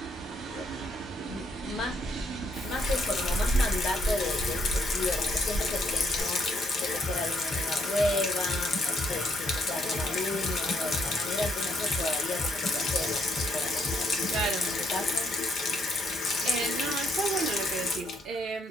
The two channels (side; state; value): both; normal; correlation 0.71